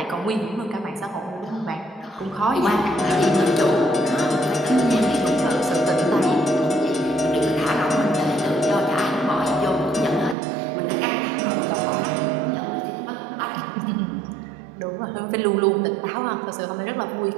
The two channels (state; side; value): drops out; left; at 10.4 s